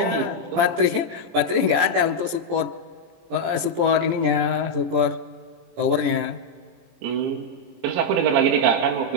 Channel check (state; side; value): late; left; 17 ms